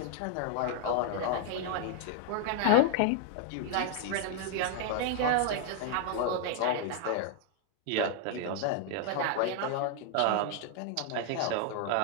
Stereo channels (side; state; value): both; different; correlation -0.01